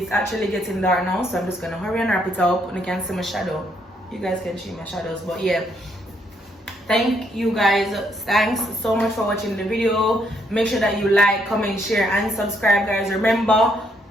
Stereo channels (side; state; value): both; normal; correlation 0.73